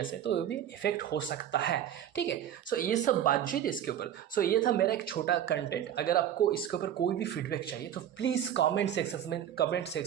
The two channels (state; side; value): quieter; left; 10.4 dB